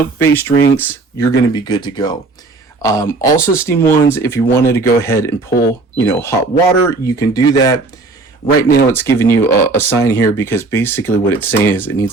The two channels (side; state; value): left; quieter; 3.6 dB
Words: drinks, you're going to be good to go. Also, Steam 1s, if you wanted to go ahead and pull, hot water, you can do that. Right now, it's giving you a sign here because basically what it's saying is it needs